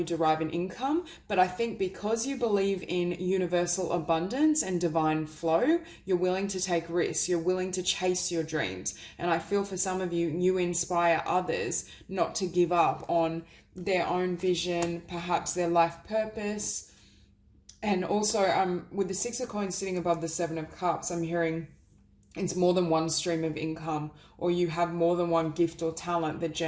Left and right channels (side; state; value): both; identical; correlation 1.00